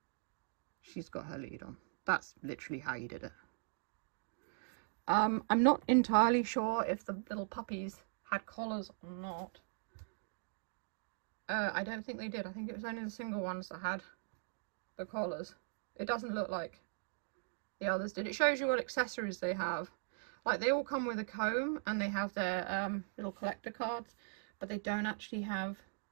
She's got her lead on. That's literally how you did it. I'm not entirely sure if the little puppies had collars or not. I don't think they did. I think it was only the single ones that had the collars. It doesn't look like the others did. It shows you what accessories they have. Like, they all come with a comb and they have their little collector cards, but they don't actually have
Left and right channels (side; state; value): left; silent; digital silence